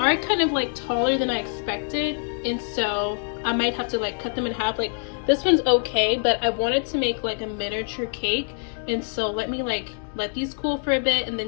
kind of like taller than I expected, and so I might have to like cut them in half. Like this one's okay, but I wanted to make like a miniature cake, and so let me like let these cool for a bit and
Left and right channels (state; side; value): silent; right; 62 dB below the other